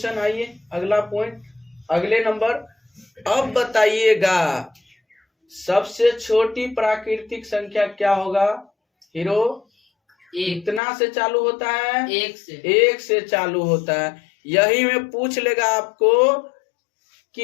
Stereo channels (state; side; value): drops out; right; at 10.8 s